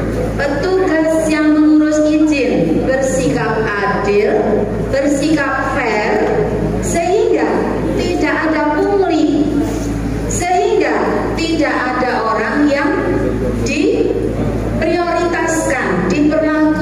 petugas yang mengurus izin bersikap adil, bersikap fair, sehingga tidak ada pungli, sehingga tidak ada orang yang diprioritaskan,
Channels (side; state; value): both; identical; correlation 1.00